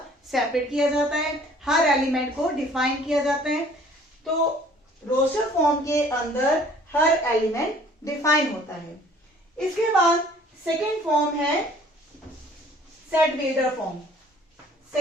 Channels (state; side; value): normal; both; correlation 0.54